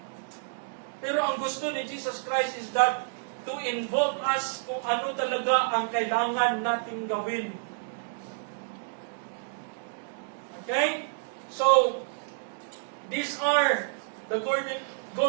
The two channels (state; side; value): silent; left; digital silence